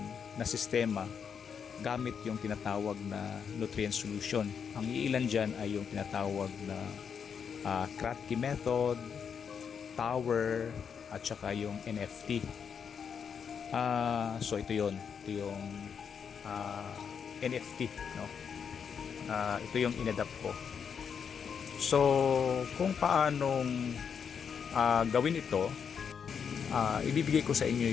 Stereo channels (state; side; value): quieter; right; 7.0 dB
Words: na sistema gamit yung tinatawag na nutrient solution. Ang iilan dyan ay yung tinatawag na Kratky method, tower, at saka yung NFT. So ito yon, ito yung NFT, no? Ito yung inadapt ko. So kung paanong gawin ito, ibibigay ko sa inyo